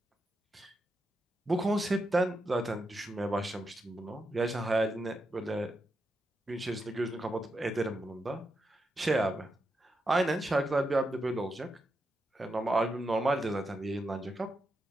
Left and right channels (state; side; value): normal; both; correlation 0.85